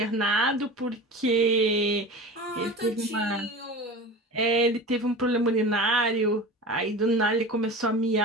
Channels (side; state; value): both; normal; correlation 0.33